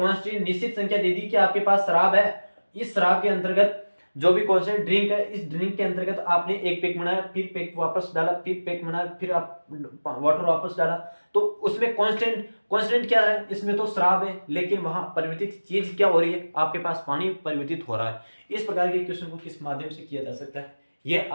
निश्चित संख्या दे दी कि आपके पास शराब है, इस शराब के अंतर्गत जो भी कांस्टेंट ड्रिंक है, इस ड्रिंक के अंतर्गत आपने एक पैक बनाया, फिर पैक वापस डाला, फिर पैक बनाया, फिर आप वाटर वापस डाला, तो उसमें कांस्टेंट क्या है, इसमें तो शराब है, लेकिन वहां परिवर्तित चीज क्या हो रही है, आपके पास पानी परिवर्तित हो रहा है। इस प्रकार के क्वेश्चन को किस माध्यम से किया जा सकता है, यह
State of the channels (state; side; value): inverted; both; correlation -1.00